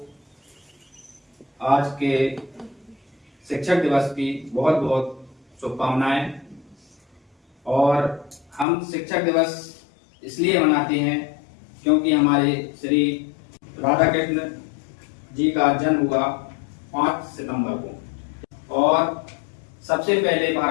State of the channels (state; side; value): drops out; right; at 8.7 s